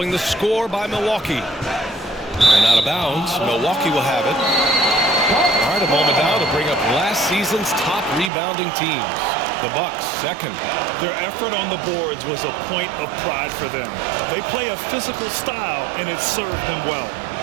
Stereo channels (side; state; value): left; drops out; at 8.3 s